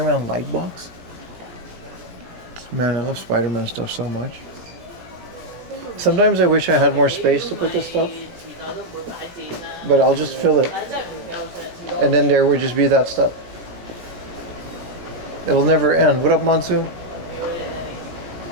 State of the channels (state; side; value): late; left; 17 ms